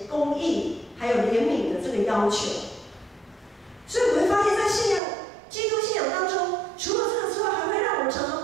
公义还有怜悯的这个要求。所以我们会发现，在基督信仰当中，除了这个之外，还会让我们常常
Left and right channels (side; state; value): left; drops out; at 5.0 s